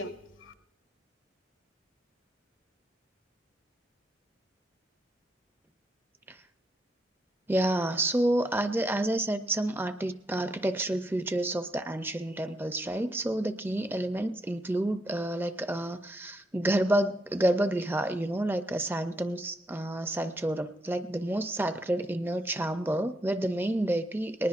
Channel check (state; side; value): normal; both; correlation 0.77